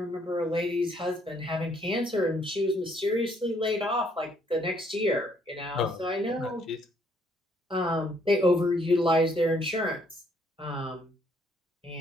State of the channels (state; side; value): normal; both; correlation 0.67